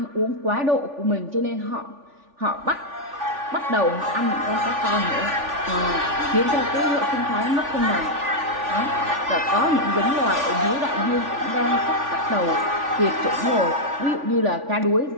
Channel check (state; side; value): late; left; 3.5 ms